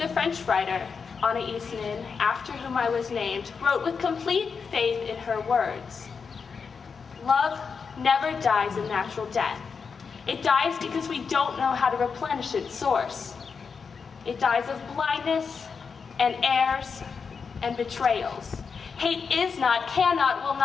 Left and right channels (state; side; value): quieter; right; 5.6 dB